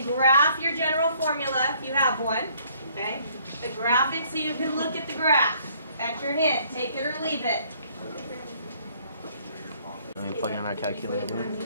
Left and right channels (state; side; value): inverted; both; correlation -0.62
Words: graph your general formula if you have one. Okay? The graph it so you can look at the graph. That's your hint. Take it or leave it. And we plug in our calculator,